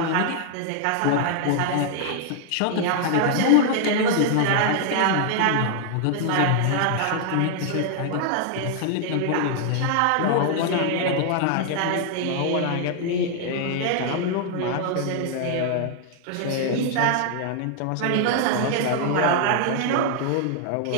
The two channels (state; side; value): different; both; correlation 0.00